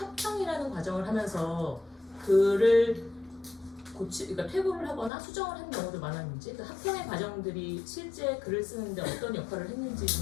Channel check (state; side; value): drops out; right; at 5.1 s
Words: 과정을 하면서 글을 그러니까 퇴고를 하거나 수정을 하는 경우도 많았는지 그 합평의 과정들이 실제 글을 쓰는데 어떤 역할을 했는지